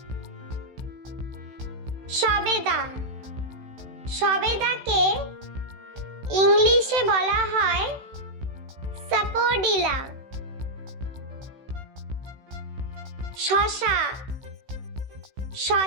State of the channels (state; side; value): late; left; 16 ms